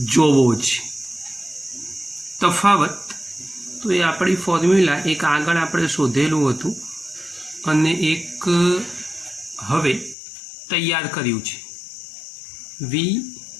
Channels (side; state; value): right; drops out; at 10.2 s